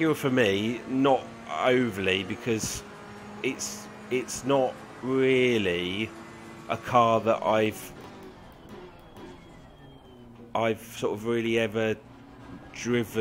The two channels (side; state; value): both; identical; correlation 1.00